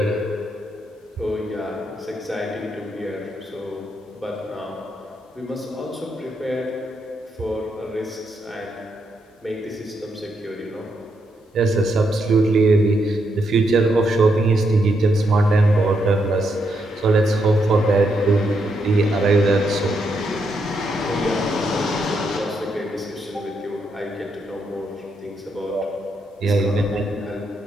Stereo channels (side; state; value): both; normal; correlation 0.79